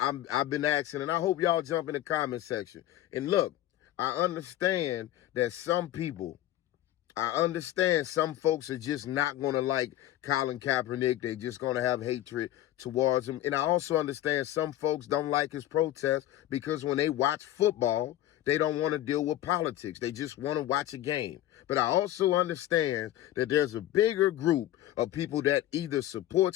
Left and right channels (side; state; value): right; quieter; 13.7 dB